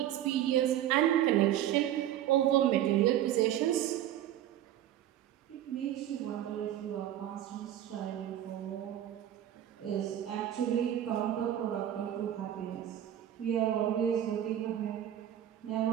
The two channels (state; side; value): quieter; left; 11.7 dB